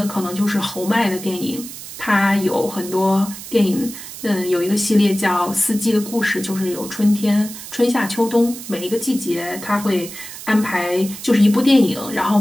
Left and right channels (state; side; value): noise; right; hiss, 12 dB below the sound